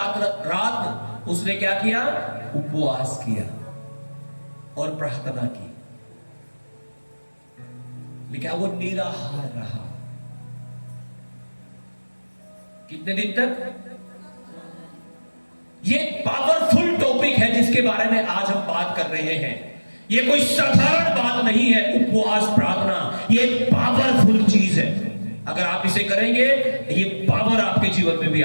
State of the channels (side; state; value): both; inverted; correlation -1.00